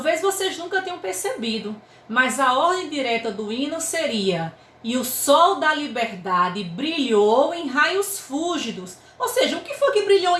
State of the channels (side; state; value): both; identical; correlation 1.00